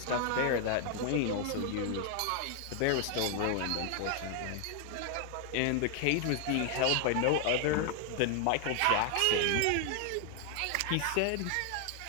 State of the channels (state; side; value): different; both; correlation 0.00